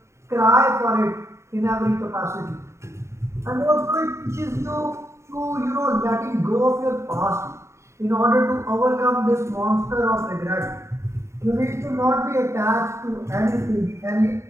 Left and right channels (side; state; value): left; late; 0.14 ms